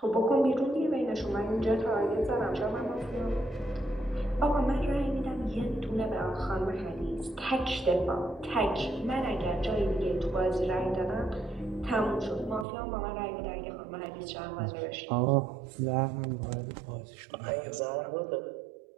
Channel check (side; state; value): left; drops out; at 12.7 s